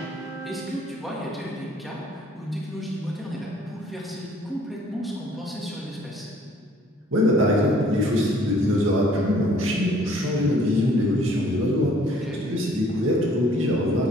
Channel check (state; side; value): normal; both; correlation 0.58